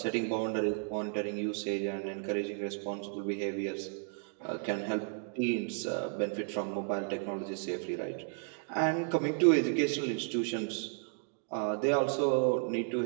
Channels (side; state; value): left; silent; 56 dB below the other